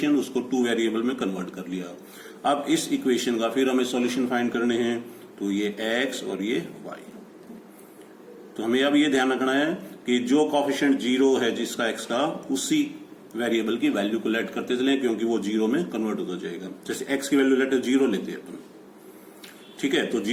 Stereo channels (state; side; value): identical; both; correlation 1.00